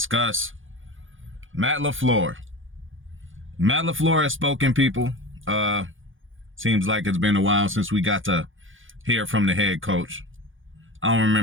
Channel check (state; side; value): late; left; 0.58 ms